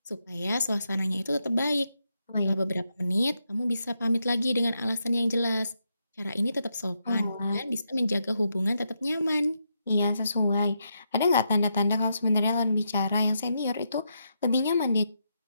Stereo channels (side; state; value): both; inverted; correlation -0.82